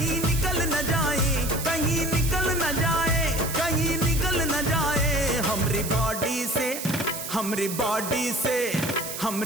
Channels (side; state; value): right; noise; hiss, 7 dB below the sound